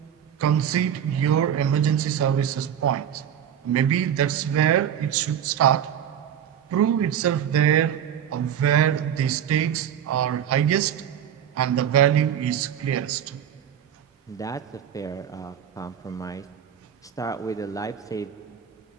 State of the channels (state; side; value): quieter; left; 9.3 dB